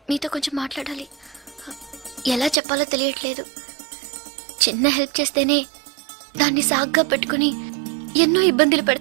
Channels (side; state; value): left; drops out; at 2.6 s